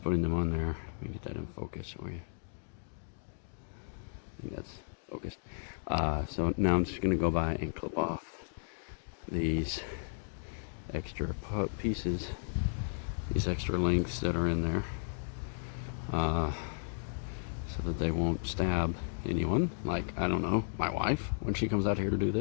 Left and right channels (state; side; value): silent; right; digital silence